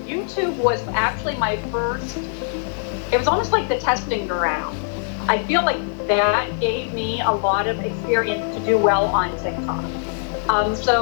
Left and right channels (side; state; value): right; silent; 64 dB below the other